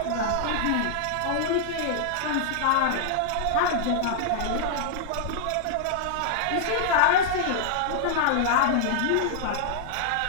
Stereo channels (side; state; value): both; different; correlation -0.01